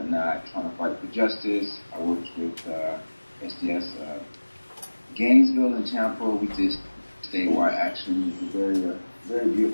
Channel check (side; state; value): both; inverted; correlation -1.00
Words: trying to fight for justice. I worked with SDS Gainesville and Tampa. We did statewide action. It was a very